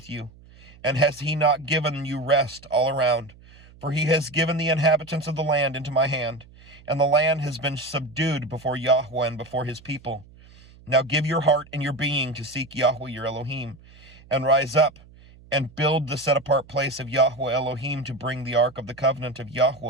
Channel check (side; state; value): right; noise; hum, 24 dB below the sound